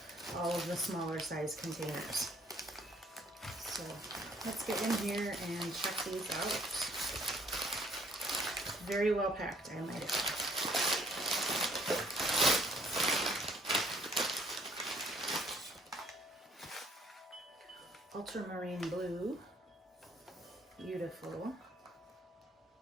all of the smaller size containers. So let's get in here and check these out. Very well packed, I might add. Ultramarine Blue, beautiful.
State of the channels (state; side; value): normal; both; correlation 0.63